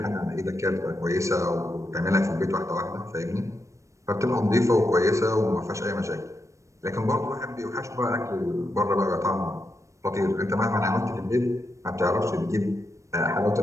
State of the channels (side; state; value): left; late; 0.15 ms